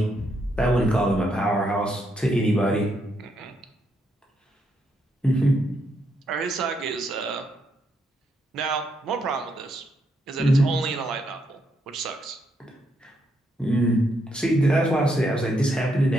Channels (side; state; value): both; normal; correlation 0.78